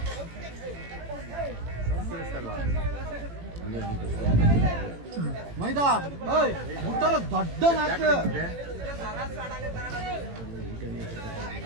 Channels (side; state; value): left; late; 18 ms